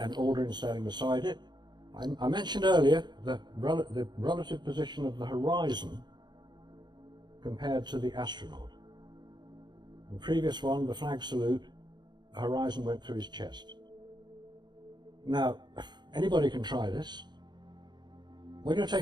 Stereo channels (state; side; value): late; left; 0.21 ms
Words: Aldrin standing beside it. I mentioned earlier the relative position of the horizon compared to the astronaut. In the previous one, the flag salute, the horizon went through his chest. Now, anybody can try this. When you're